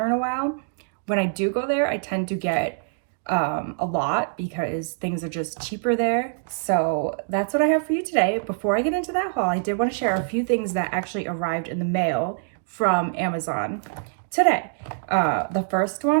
in a while. When I do go there, I tend to get a lot because things are just cheaper there. So that's what I have for you today. Before I get into that haul, I did want to share a few things that actually arrived in the mail from Amazon today. The first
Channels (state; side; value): silent; left; digital silence